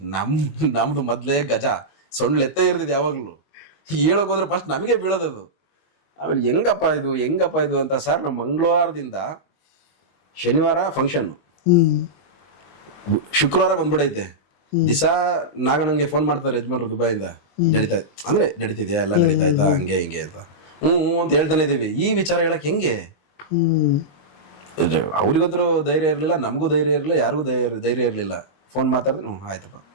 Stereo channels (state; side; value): late; right; 21 ms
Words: ನಮ್ದು ಮೊದ್ಲೇ ಗಜ ಸೊಂಡ್ಲೆತ್ತೇ ಇರ್ತಿದ್ ಯಾವಾಗ್ಲೂ. ಹೇಳೋಕ್ ಹೋದ್ರೆ ಫಸ್ಟ್ ನಮಗೆ ಬೀಳೋದದು. ಆಮೇಲೆ ಹೆಂಗಪ್ಪ ಇದು ಅಂತ, ಸರ್ ನಮ್ಮ ಮಂಗಳವಾರದಿಂದ ಶನಿವಾರ ಫಂಕ್ಷನ್, ಶುಕ್ರವಾರ ಬಂದ್ಬಿಡೈತೆ. ದಿಸಾ ನಾಗಣ್ಣಂಗೆ ಫೋನ್ ಮಾಡ್ತಾರೆ ಯಜಮಾನ್ರು ದುಬೈಯಿಂದ, ನಡೀತಿದ್ಯಾ ಎಲ್ಲ ನಡೀತಾಯ್ತಾ ಹಂಗೆ ಹಿಂಗೆ ಅಂತ. ಹ್ಞೂ ಅಂತ ಹೇಳ್ತಾನೆ ಇದೀವಿ. ಈ ವಿಚಾರ ಹೇಳಕ್ ಹೆಂಗೆ? ಅವ್ರಿಗಂತೂ ಧೈರ್ಯ ಇರಲಿಲ್ಲ, ನಮಗೂ ಧೈರ್ಯ ಇರಲಿಲ್ಲ, ಯಾರಿಗೂ ಧೈರ್ಯ ಇರಲಿಲ್ಲ. ಫೋನ್ ಮಾತಾಡಿದ್ರೆ ಆಯ್ತಪ್ಪ